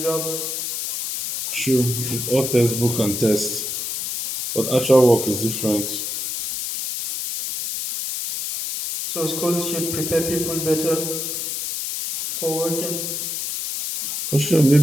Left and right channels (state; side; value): noise; left; hiss, 3 dB below the sound